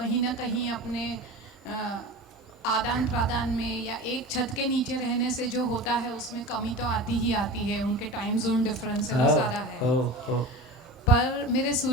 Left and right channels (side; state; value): both; normal; correlation 0.32